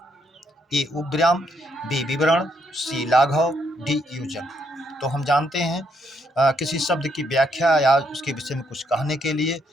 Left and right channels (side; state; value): both; normal; correlation 0.74